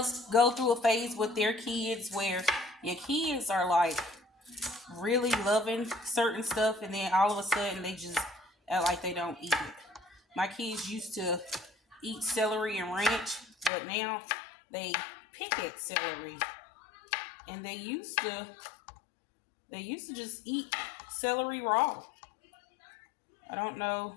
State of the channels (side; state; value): right; drops out; at 13.7 s